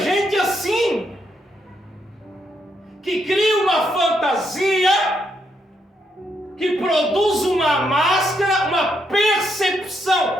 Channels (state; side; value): normal; both; correlation 0.77